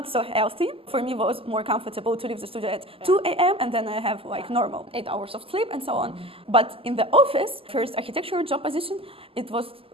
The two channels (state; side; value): late; left; 0.26 ms